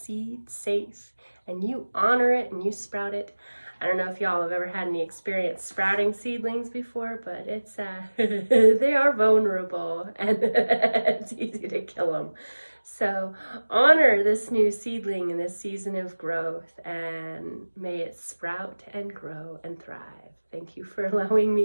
safe and you honor it and you sprout it. I don't know if y'all have ever had any experience sprouting seedlings before, but it's they are vulnerable and it's easy to kill them. So honor this new seedling in this season of growth, and may it sprout and grow and thrive. Thank you for allowing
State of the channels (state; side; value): inverted; both; correlation -1.00